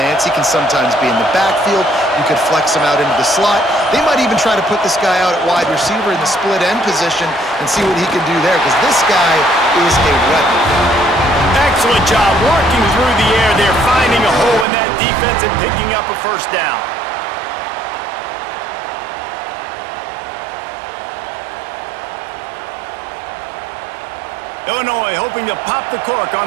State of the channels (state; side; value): drops out; left; at 14.7 s